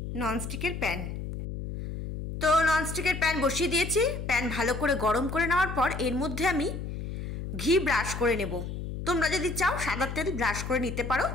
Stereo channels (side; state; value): left; noise; hum, 6 dB below the sound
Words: ননস্টিকের প্যান। তো ননস্টিকের প্যান বসিয়ে দিয়েছি। প্যান ভালো করে গরম করে নেওয়ার পর এর মধ্যে আমি ঘি ব্রাশ করে নেব। তোমরা যদি চাও সাদা তেল ব্রাশ করে নিতে পারো,